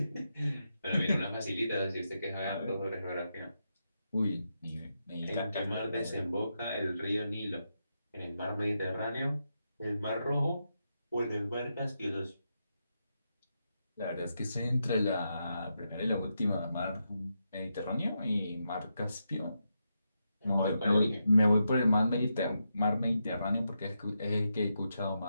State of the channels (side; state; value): both; inverted; correlation -0.85